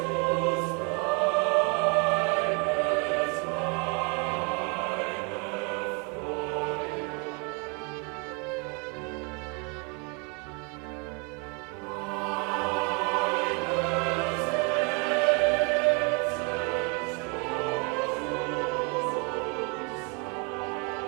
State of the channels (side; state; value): left; quieter; 33.1 dB